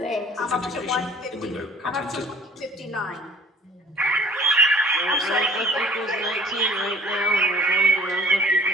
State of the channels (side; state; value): both; normal; correlation 0.51